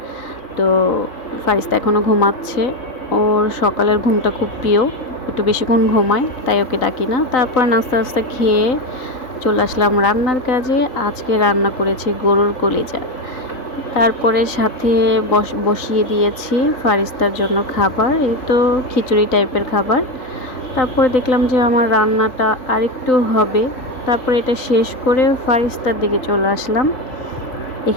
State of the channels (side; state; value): right; late; 3.9 ms